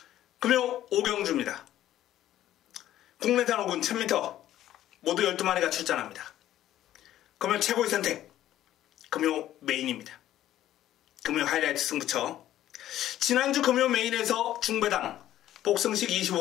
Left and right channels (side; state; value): right; quieter; 12.8 dB